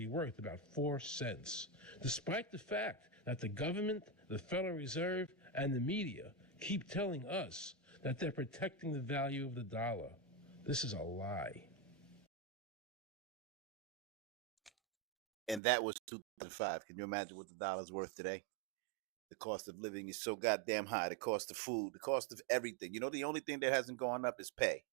worth about 4 cents, despite the fact that the government, the Federal Reserve, and the media keep telling us that they're protecting the value of the dollar. This is a lie. And that was 2005. Can you imagine what the dollar's worth today? The cost of living is so goddamn high. The cost of food, the cost of everything. You know, the only thing that hasn't gone up is pay,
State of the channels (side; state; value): left; drops out; at 15.6 s